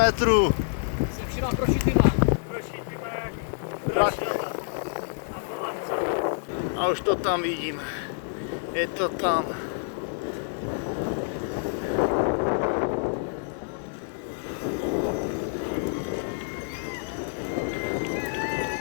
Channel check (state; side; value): silent; right; 60 dB below the other